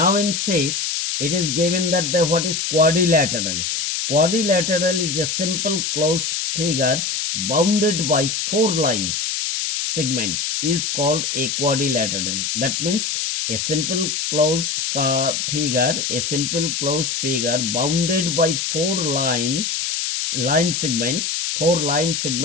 6, it is given that what is quadrilateral. Quadrilateral is a simple closed figure bounded by four lines. Segment is called a quadrilateral. That means a simple closed figure bounded by four line segments. Four line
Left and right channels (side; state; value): left; noise; hiss, 1 dB below the sound